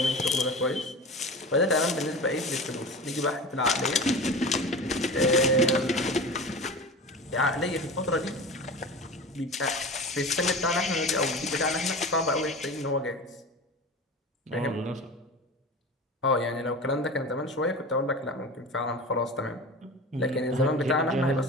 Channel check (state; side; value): normal; both; correlation 0.32